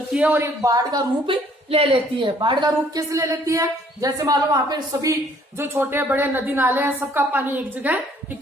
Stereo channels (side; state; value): both; normal; correlation 0.61